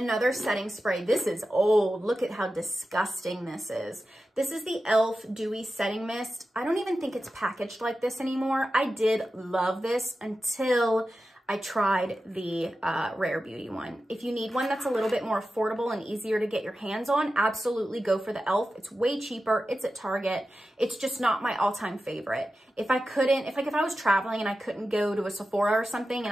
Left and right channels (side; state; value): both; normal; correlation 0.92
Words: setting spray. This is old. Look at how disgusting this is. This is the e.l.f. Dewy Setting Mist. I don't even think it's packaged like this anymore. I did love this until I tried the Rare Beauty one. If you need one that's a little bit more affordable and easier to get your hands on, absolutely go for the e.l.f. It's way cheaper. It's at Target. It's just not my all-time favorite. If I was traveling and I couldn't go to a Sephora or something and